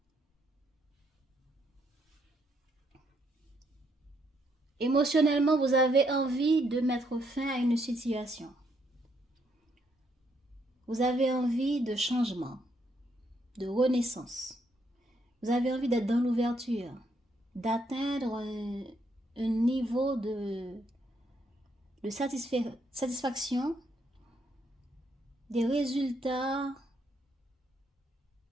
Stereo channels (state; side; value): normal; both; correlation 0.74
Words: Émotionnellement, vous avez envie de mettre fin à une situation. Vous avez envie de changement, de renaissance. Vous avez envie d'être dans l'ouverture, d'atteindre un niveau de satisfaction, des résultats